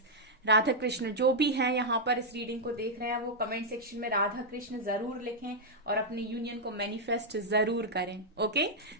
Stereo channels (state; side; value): normal; both; correlation -0.05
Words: Radha Krishna जो भी हैं यहाँ पर इस रीडिंग को देख रहे हैं वो कमेंट सेक्शन में राधा कृष्ण जरूर लिखें और अपने यूनियन को मैनिफेस्ट जरूर करें। ओके